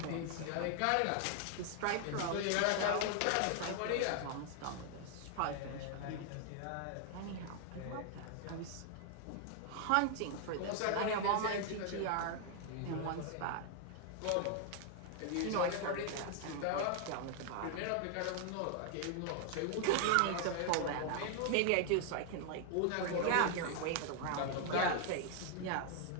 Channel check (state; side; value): different; both; correlation 0.00